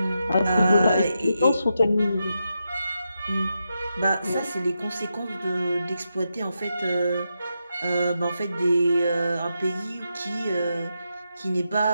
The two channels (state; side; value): inverted; both; correlation -0.86